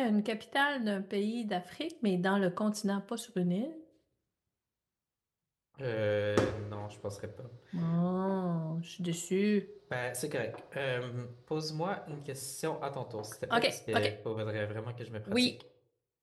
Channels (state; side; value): identical; both; correlation 1.00